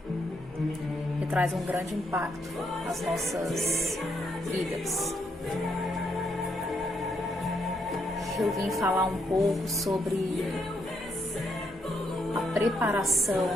Que traz um grande impacto nas nossas vidas. Eu vim falar um pouco sobre a preparação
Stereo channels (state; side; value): normal; both; correlation 0.76